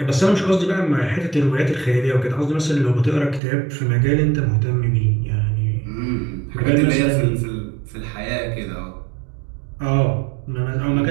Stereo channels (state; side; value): drops out; left; at 3.4 s